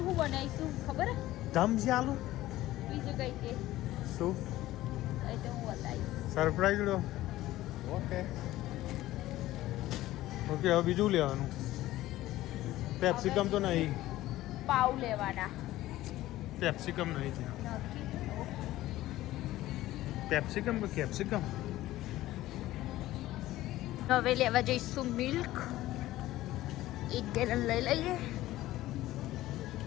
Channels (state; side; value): quieter; right; 15.8 dB